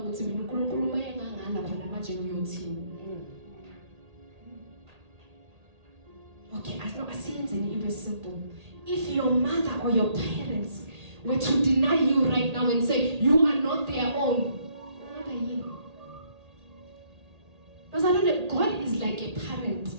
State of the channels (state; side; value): late; left; 1.8 ms